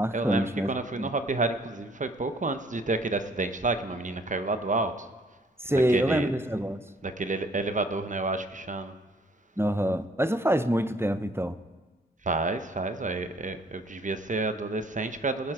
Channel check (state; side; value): normal; both; correlation 0.61